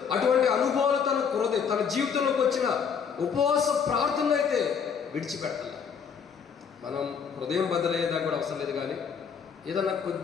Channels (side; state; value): right; quieter; 6.8 dB